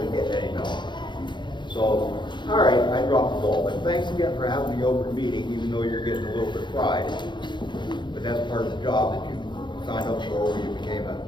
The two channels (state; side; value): late; right; 0.22 ms